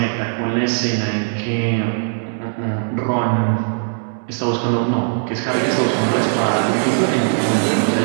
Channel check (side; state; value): left; silent; digital silence